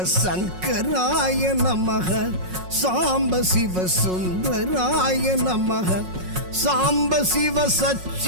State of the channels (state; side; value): late; left; 5.5 ms